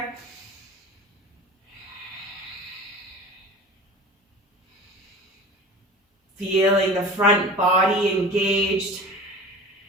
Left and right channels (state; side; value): normal; both; correlation 0.37